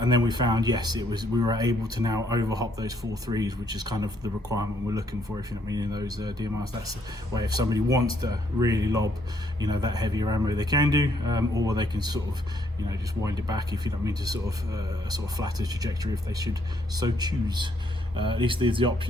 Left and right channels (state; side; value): normal; both; correlation 0.70